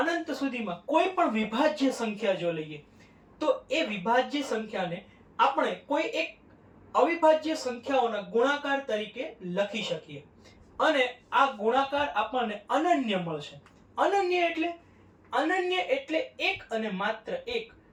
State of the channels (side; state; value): both; identical; correlation 1.00